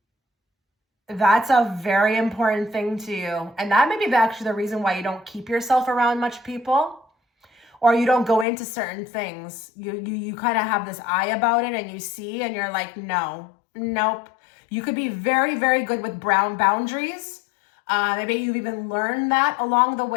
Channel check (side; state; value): right; drops out; at 8.5 s